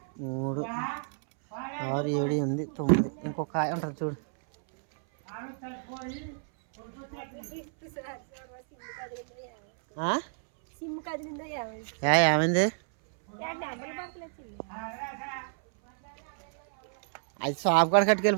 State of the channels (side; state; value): left; silent; 58 dB below the other